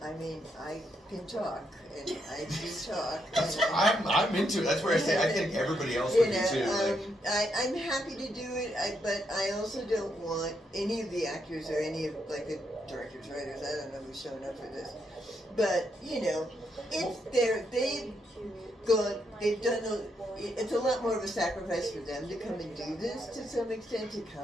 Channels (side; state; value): both; normal; correlation 0.79